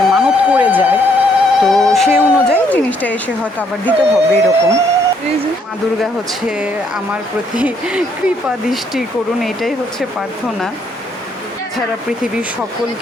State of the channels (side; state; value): both; normal; correlation 0.69